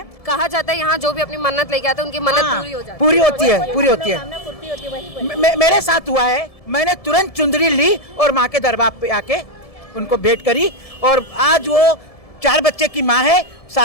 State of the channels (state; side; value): late; right; 1.7 ms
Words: कहा जाता है यहाँ जो भी अपनी मन्नत लेके आता है उनकी मन्नत पूरी हो जाती है। पूरी होती है। मेरे साथ हुआ है, मैंने तुरंत चुंदरी ली और माँ के दरबार पे आके उनको भेंट करी और आज वो 4 बच्चे की माँ है,